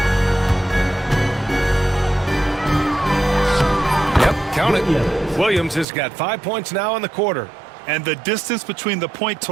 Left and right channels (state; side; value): drops out; left; at 5.9 s